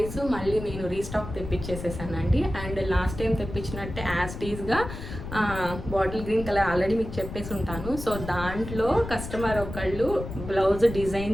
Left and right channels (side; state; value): left; noise; rumble, 9 dB below the sound